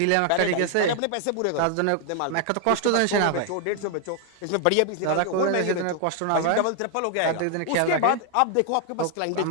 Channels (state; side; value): different; both; correlation 0.00